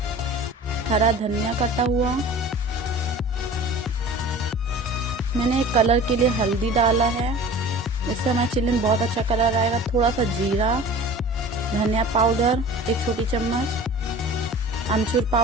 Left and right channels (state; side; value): normal; both; correlation 0.41